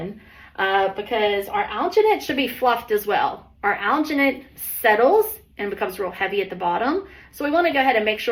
because our alginate should be fluffed as well. Our alginate settles and becomes real heavy at the bottom. So we want to go ahead and make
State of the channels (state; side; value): identical; both; correlation 1.00